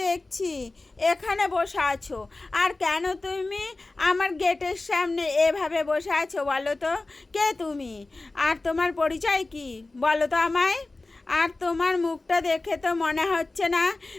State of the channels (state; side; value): quieter; right; 3.2 dB